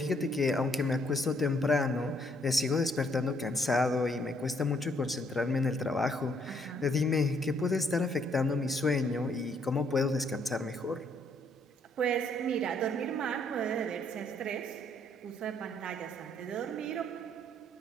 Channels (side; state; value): both; normal; correlation 0.68